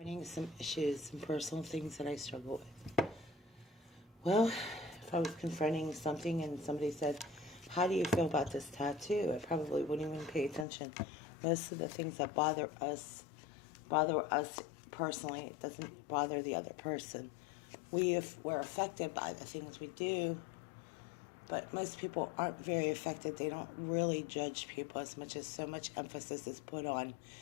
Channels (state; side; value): drops out; right; at 10.7 s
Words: Finding some issues, some personal things that I struggle with. Well, if I was confronting something and somebody said, how do you feel about this tattoo? I probably wouldn't even pay attention. Most of the things that bother us personally. It doesn't bother the other person. We're affected by the things we do, but most people aren't very affected. They don't really judge people as much as so much emphasis is put on